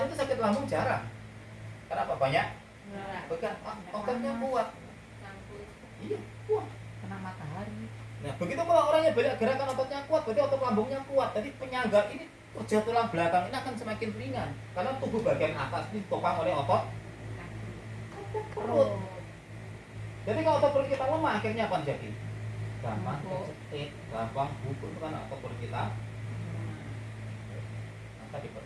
itu sakit lambung jarang. Kenapa? Banyak bekan, ototnya kuat. Iya, kuat. Kena matahari. Nah, begitu kalau orangnya banyak gerakan, ototnya kuat, berarti otot lambungnya kuat. Jadi penyangga ini kerja tulang belakang ini akan semakin ringan karena tubuh bagian atas ini ditopang oleh otot perut. Jadi kalau otot perut kita lemah, akhirnya apa jadi? Gampang kecetit, gampang bubur karena otot perut kita. Maka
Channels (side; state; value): both; identical; correlation 1.00